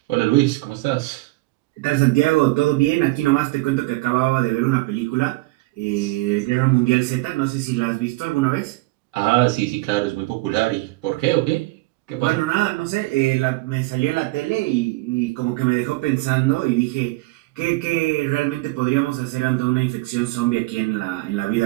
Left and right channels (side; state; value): left; quieter; 21.7 dB